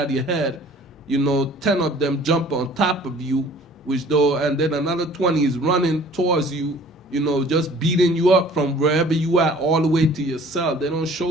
your head. You know, 10 of them jump on top of you, and then another 20 is running towards you, you know, just beating you up from wherever you are all the way to your cell. They don't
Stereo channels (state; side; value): normal; both; correlation 0.51